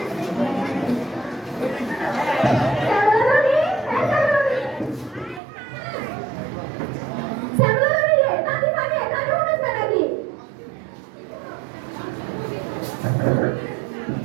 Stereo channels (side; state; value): left; drops out; at 5.4 s